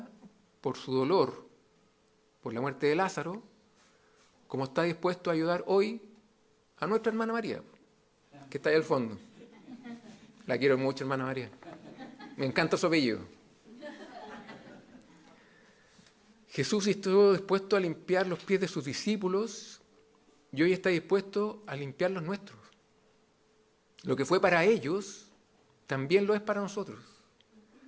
por su dolor, por la muerte de Lázaro, como está dispuesto a ayudar hoy a nuestra hermana María, que está ahí al fondo. La quiero mucho, hermana María. Me encanta su apellido. Jesús estuvo dispuesto a limpiar los pies de sus discípulos y hoy está dispuesto a limpiar los nuestros. Lo que fue para ellos, también lo es para nosotros.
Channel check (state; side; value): identical; both; correlation 1.00